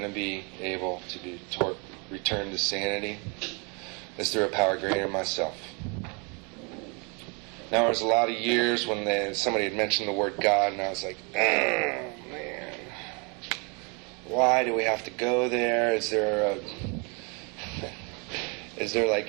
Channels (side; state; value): left; quieter; 33.0 dB